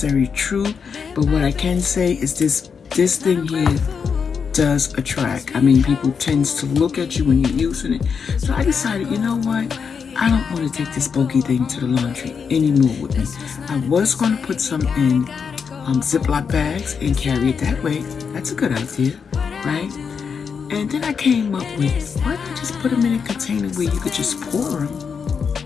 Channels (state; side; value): quieter; right; 6.2 dB